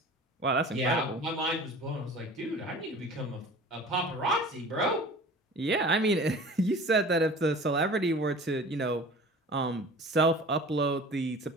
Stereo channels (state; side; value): normal; both; correlation 0.42